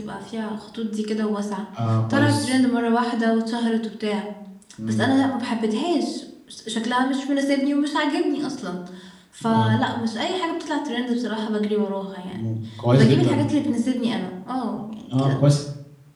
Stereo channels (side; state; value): both; identical; correlation 1.00